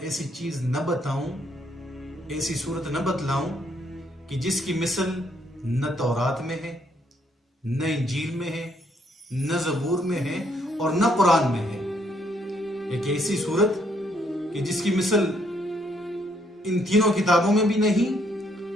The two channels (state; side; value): normal; both; correlation 0.71